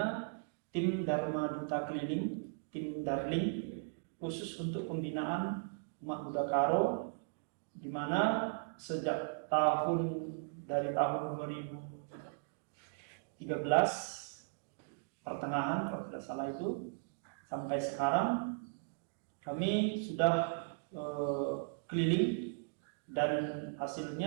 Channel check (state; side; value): silent; left; digital silence